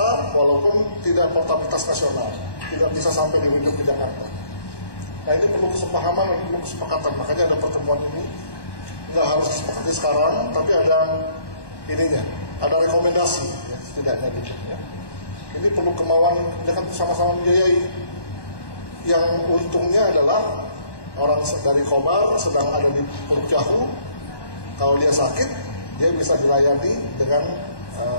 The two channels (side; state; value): right; late; 1.1 ms